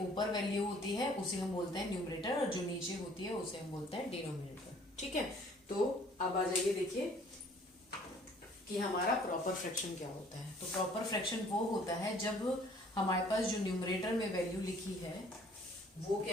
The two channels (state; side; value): normal; both; correlation 0.56